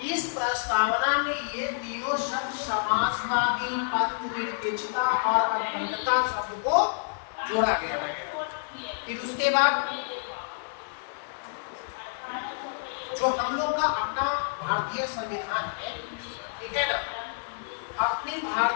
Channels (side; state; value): right; silent; 59 dB below the other